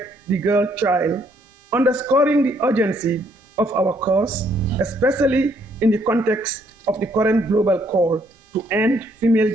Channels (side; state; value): both; normal; correlation 0.68